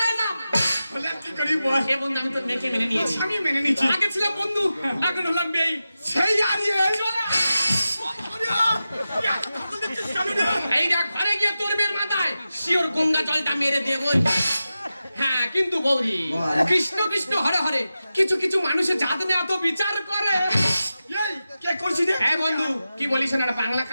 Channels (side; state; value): both; inverted; correlation -0.92